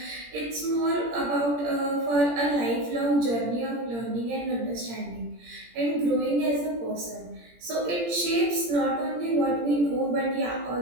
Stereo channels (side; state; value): left; late; 17 ms